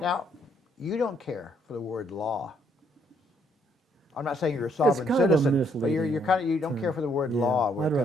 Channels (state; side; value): normal; both; correlation 0.70